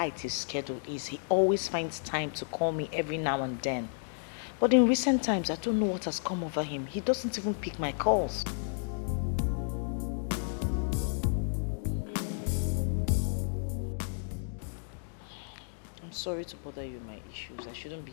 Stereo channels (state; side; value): silent; right; digital silence